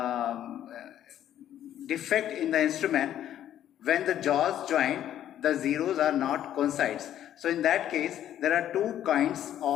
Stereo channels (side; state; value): right; quieter; 11.2 dB